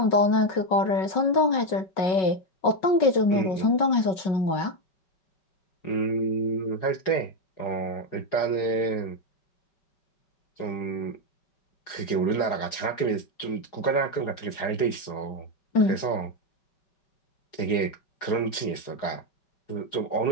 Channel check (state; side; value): late; right; 4.8 ms